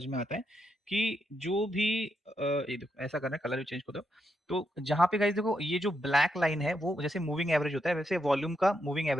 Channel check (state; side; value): normal; both; correlation 0.82